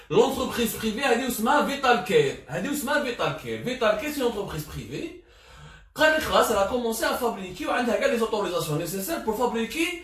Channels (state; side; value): identical; both; correlation 1.00